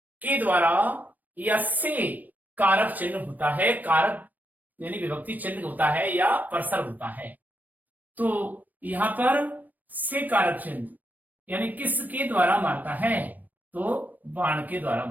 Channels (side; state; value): left; late; 0.082 ms